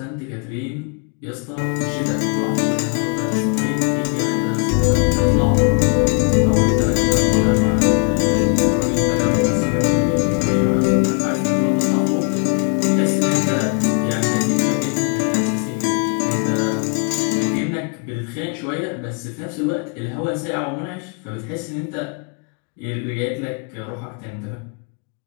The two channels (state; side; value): quieter; right; 36.2 dB